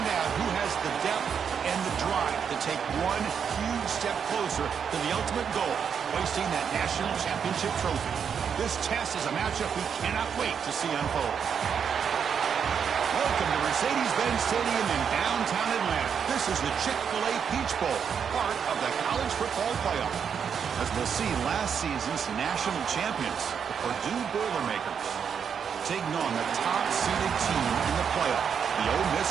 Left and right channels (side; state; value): left; quieter; 7.2 dB